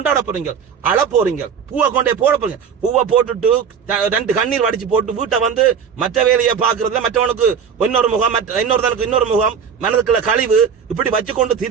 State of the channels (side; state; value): left; quieter; 7.0 dB